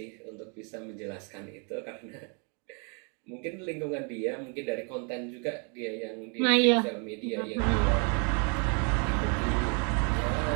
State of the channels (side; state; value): left; quieter; 36.6 dB